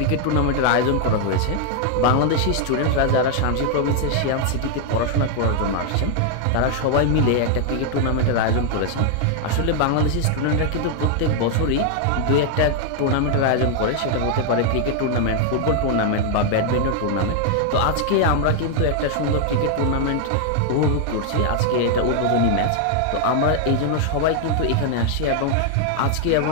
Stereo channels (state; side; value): different; both; correlation 0.00